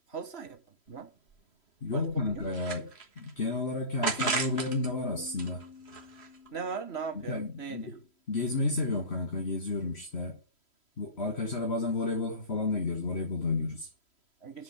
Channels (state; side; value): late; right; 3.1 ms